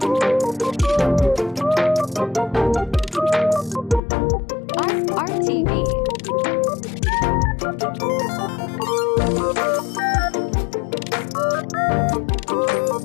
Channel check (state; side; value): drops out; right; at 4.0 s